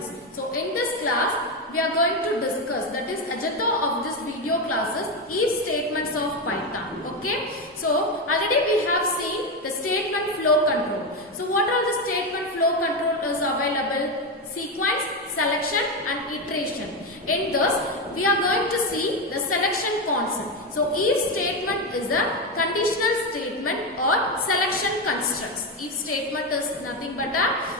So in this class we are going to discuss, that is agenda of this video classes, if statements of Python. Okay. So already we have seen the statement flow control. So what are the statement flow control is available? Sequence, selection and iteration. In this we are going to see the selection concept. So if statement is a conditional statement or selection constructs. If statement is nothing but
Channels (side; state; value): both; normal; correlation 0.12